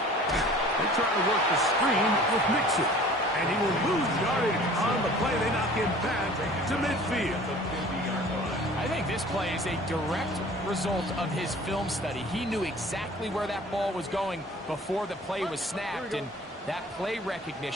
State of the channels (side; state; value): both; normal; correlation 0.47